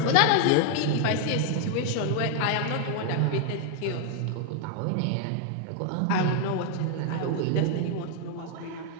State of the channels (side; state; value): both; different; correlation 0.00